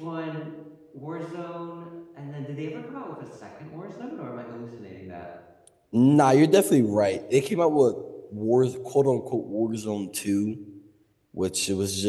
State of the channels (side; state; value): both; identical; correlation 1.00